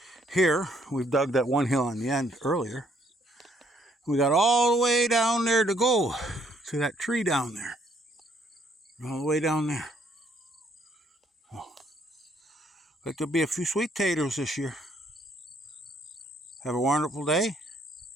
here. We've dug that one hill on the end earlier. We got all the way down there to go to that tree down there. All the way down there. Oh, like there'll be a few sweet taters this year. Have a wonderful day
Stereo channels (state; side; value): normal; both; correlation 0.68